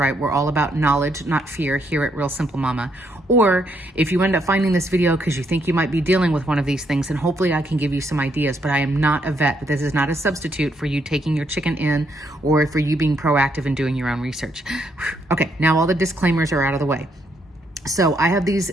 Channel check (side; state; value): both; normal; correlation 0.75